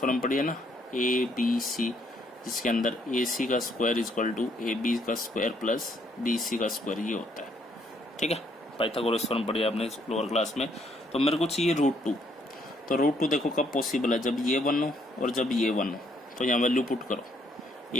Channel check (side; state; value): both; normal; correlation 0.69